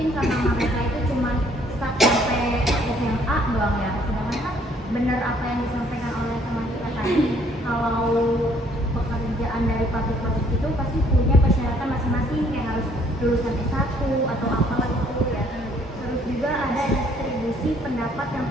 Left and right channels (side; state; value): both; normal; correlation 0.63